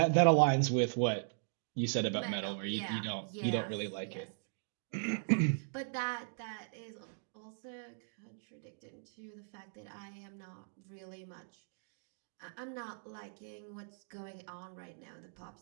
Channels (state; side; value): silent; left; digital silence